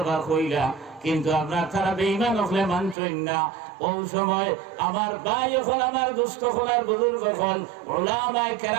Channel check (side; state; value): left; drops out; at 3.0 s